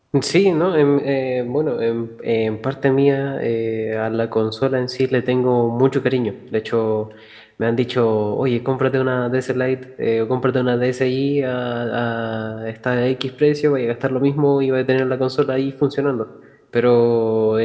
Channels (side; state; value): both; identical; correlation 1.00